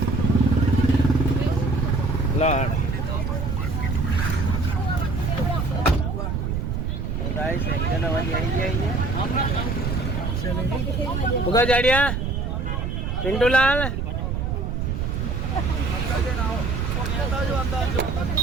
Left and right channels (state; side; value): noise; right; rumble, 1 dB below the sound